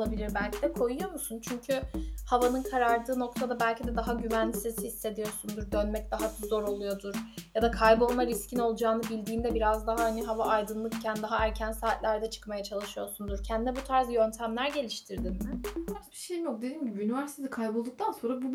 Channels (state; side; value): identical; both; correlation 1.00